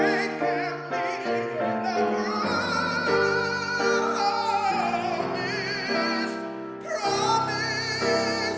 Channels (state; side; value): identical; both; correlation 1.00